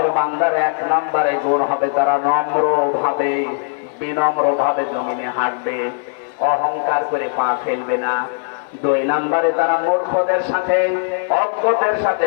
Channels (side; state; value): right; silent; 59 dB below the other